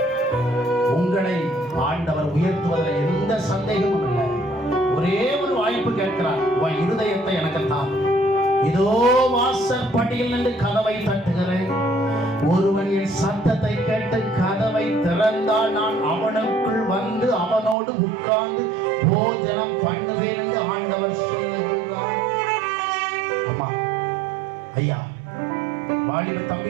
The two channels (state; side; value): drops out; left; at 17.8 s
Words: உங்களை ஆண்டவர் உயர்த்துவதில் எந்த சந்தேகமும் இல்லை. ஒரே ஒரு வாய்ப்பு கேட்கிறார், உன் இருதயத்தை எனக்கு தான். இதோ வாசற்படியில் நின்று கதவை தட்டுகிறேன். ஒருவன் என் சத்தத்தை கேட்டு கதவை திறந்தால் நான் அவனுக்குள் வந்து அவனோடு உட்கார்ந்து போஜனம் பண்ணுவேன் என்று ஆண்டவர் சொல்லுகிறார். அம்மா, ஐயா, வாலிப தம்பி,